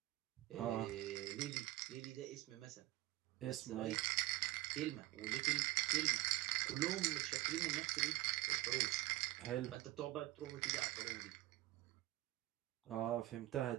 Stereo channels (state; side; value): quieter; left; 17.6 dB